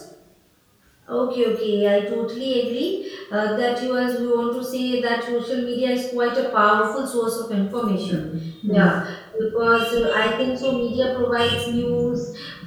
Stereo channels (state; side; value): identical; both; correlation 1.00